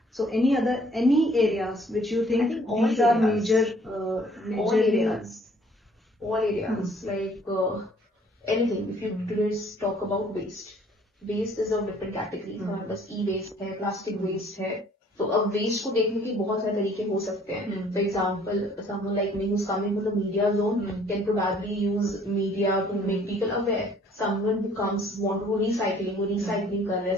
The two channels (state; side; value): normal; both; correlation 0.58